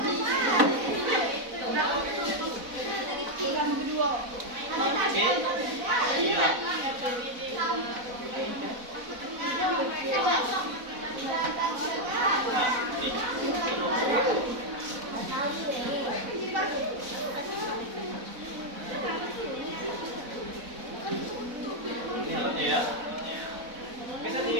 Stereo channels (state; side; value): late; left; 4.0 ms